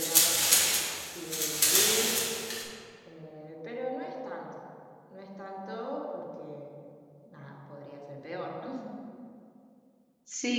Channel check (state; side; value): identical; both; correlation 1.00